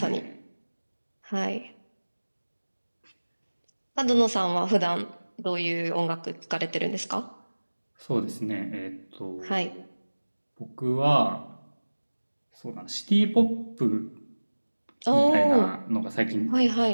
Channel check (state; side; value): inverted; both; correlation -1.00